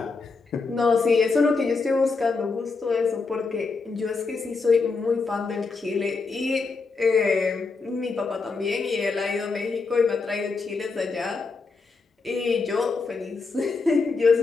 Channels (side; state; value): right; quieter; 4.3 dB